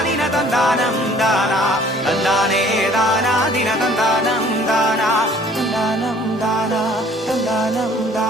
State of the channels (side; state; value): both; normal; correlation 0.54